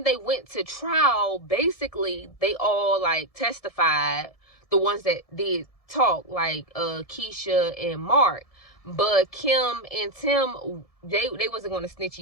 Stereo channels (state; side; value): late; right; 1.7 ms